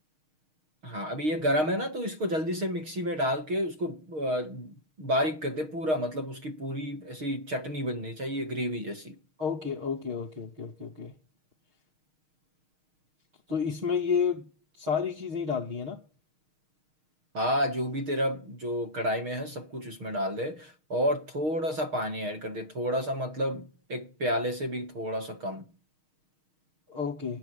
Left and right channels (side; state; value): left; late; 6.4 ms